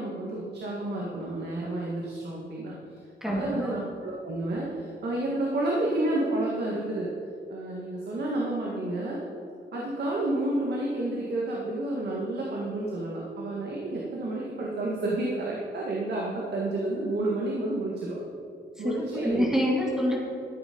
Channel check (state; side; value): normal; both; correlation 0.66